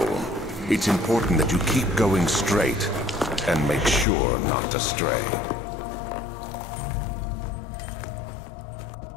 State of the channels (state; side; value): drops out; right; at 4.0 s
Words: It's important that you keep going straight and make sure not to stray.